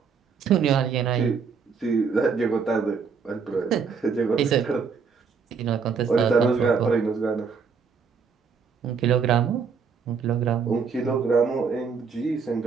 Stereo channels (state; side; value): quieter; left; 5.7 dB